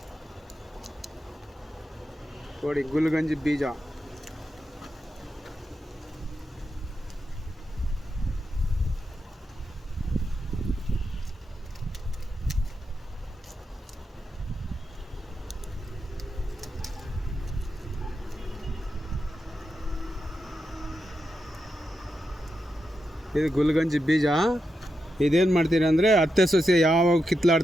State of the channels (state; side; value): normal; both; correlation 0.87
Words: ನೋಡಿ. ಗುಲ್ಗಂಜಿ ಬೀಜ ಇದು ಗುಲ್ಗಂಜಿ ಬೀಜ. ಇದೇನು ಮಾಡ್ತೀರಿ ಅಂದರೆ, ಅತ್ತೆ ಸೊಸೆ ಯಾವಾಗ